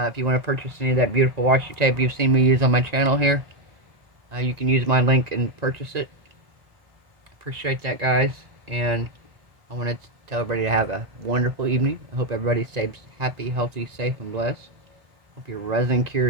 you want to purchase any of that beautiful washi tape you've seen me use on my channel here, you can use my link and purchase it. Appreciate that, guys. And I want to tell everybody to have a wonderful evening. I hope everybody stays happy, healthy, safe, and blessed. Hope your resin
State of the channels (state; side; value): late; left; 1.9 ms